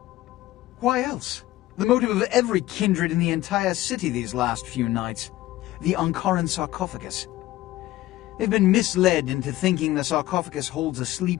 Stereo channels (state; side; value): quieter; right; 16.1 dB